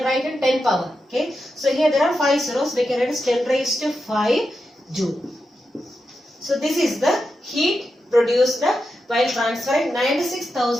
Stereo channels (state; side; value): normal; both; correlation 0.88